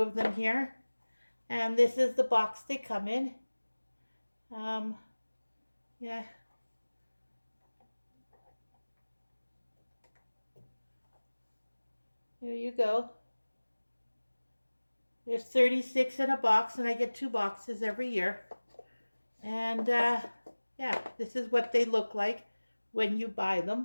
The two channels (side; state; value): both; inverted; correlation -1.00